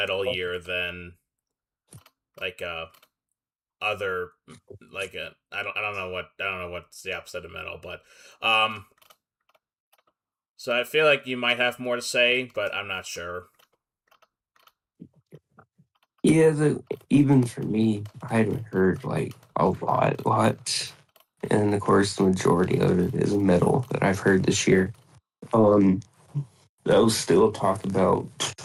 year than like other like a I don't know what's the opposite of metal, but um so I feel like you might have more to say, but I'm not sure. Yeah, even for me, I hadn't heard like a lot. And of course, the majority of it is metal that I've heard this year. Um, I'll still talk about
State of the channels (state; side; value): identical; both; correlation 1.00